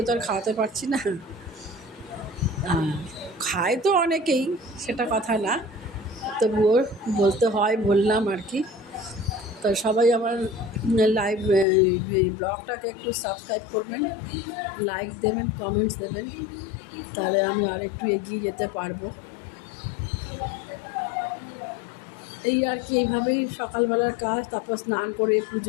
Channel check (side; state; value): right; drops out; at 11.7 s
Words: তো আর খাওয়াতে পারছি না, খায় তো অনেকেই, সেটা কথা না, তবুও বলতে হয়, বললাম আর কি। তো সবাই আমার লাইভ ব্লগটাকে একটু সাবস্ক্রাইব করবেন, লাইক দেবেন, কমেন্টস দেবেন, তাহলে আমি আর একটু এগিয়ে যেতে পারবো। এই আর কি, এইভাবেই সকালবেলার কাজ। তারপর স্নান করে